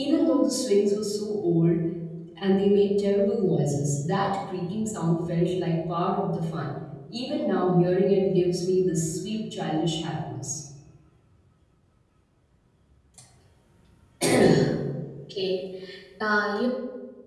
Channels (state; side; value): identical; both; correlation 1.00